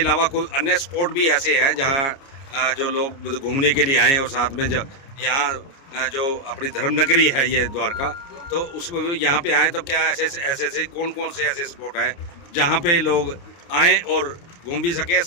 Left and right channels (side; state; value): right; late; 29 ms